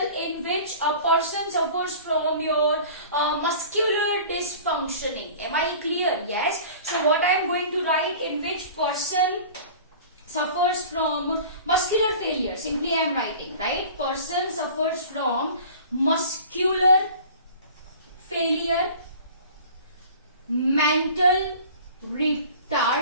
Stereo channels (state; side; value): inverted; both; correlation -0.42